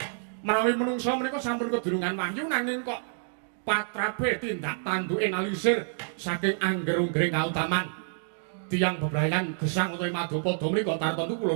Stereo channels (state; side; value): silent; left; digital silence